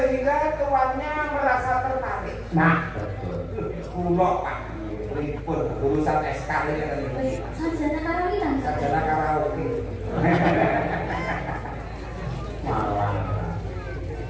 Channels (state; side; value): identical; both; correlation 1.00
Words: tuannya merasa tertarik. Nah, betul. Kulo Pak, pripun urusan SK ini kan ini. Sarjana karaoke kan? Sarjana karaoke. Malah.